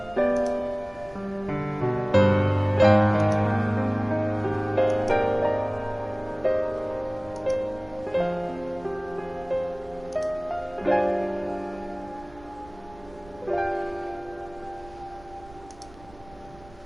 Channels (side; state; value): right; noise; rumble, 23 dB below the sound